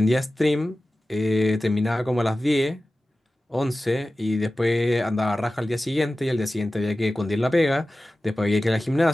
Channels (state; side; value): normal; both; correlation 0.95